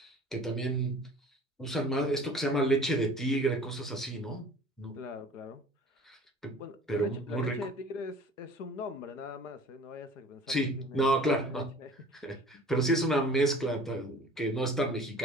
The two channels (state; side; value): normal; both; correlation 0.46